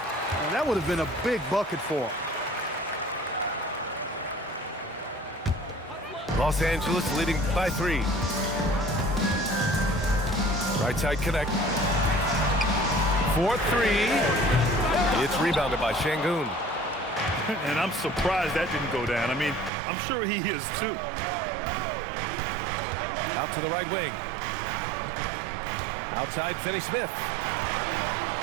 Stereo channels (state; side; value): drops out; left; at 19.7 s